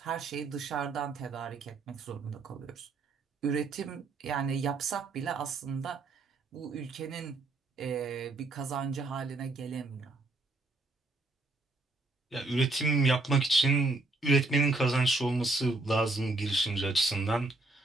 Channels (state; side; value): quieter; left; 3.3 dB